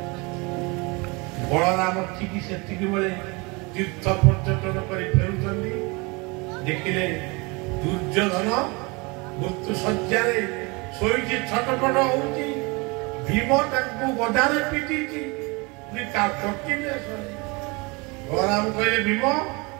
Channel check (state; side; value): quieter; left; 27.4 dB